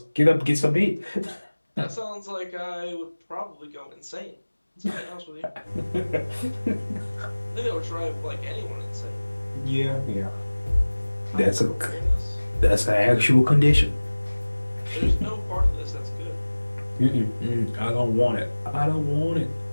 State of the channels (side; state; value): both; inverted; correlation -1.00